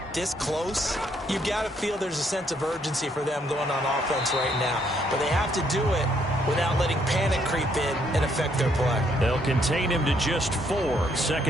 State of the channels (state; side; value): normal; both; correlation 0.70